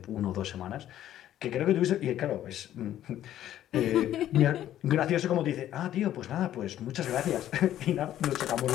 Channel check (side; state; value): right; quieter; 12.1 dB